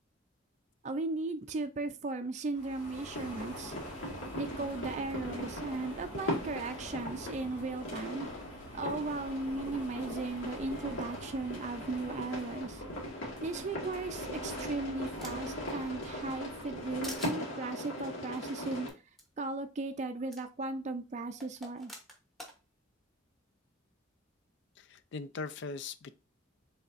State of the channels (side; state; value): both; normal; correlation 0.33